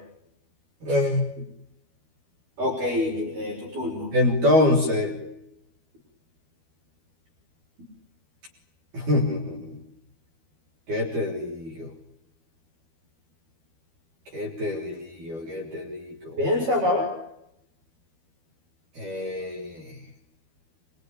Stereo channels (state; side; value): late; left; 12 ms